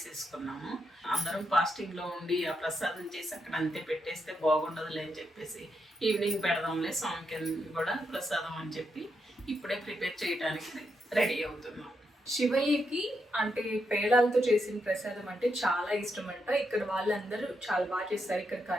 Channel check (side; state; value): both; normal; correlation 0.82